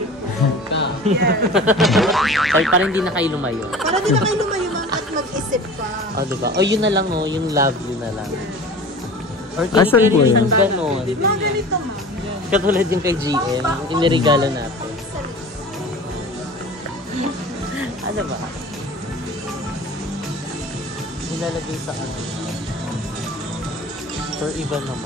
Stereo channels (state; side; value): normal; both; correlation 0.39